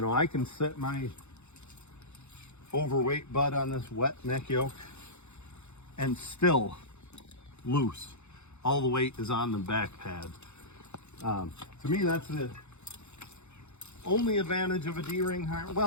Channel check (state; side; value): late; right; 0.82 ms